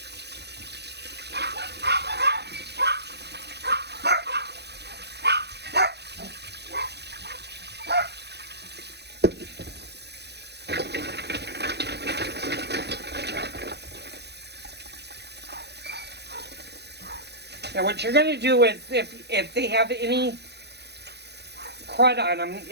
Now what you're going to do is, if they have any crud on them,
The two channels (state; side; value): late; left; 0.49 ms